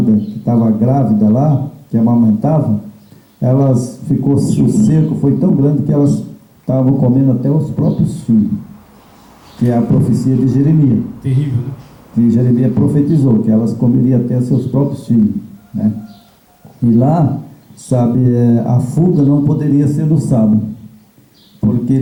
que estavam grávidas lá, que amamentavam, o cerco foi tão grande que elas estavam comendo até os próprios filhos. Que é a profecia de Jeremias. Terrível, né? Que Jeremias profetizou, que elas comeriam até seus próprios filhos, né? E lá, sabe, a fuga não poderia ser no sábado, porque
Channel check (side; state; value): both; identical; correlation 1.00